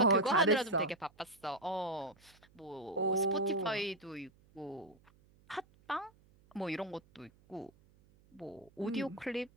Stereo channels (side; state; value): right; noise; hum, 29 dB below the sound